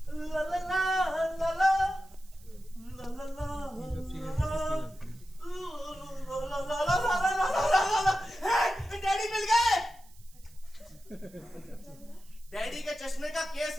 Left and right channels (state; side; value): noise; right; hiss, 26 dB below the sound